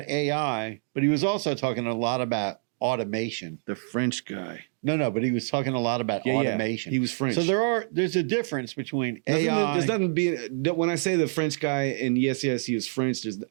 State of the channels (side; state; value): left; silent; digital silence